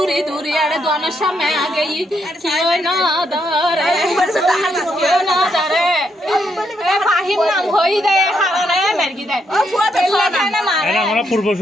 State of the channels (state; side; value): normal; both; correlation 0.77